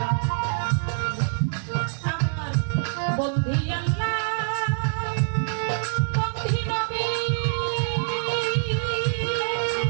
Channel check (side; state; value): left; silent; 59 dB below the other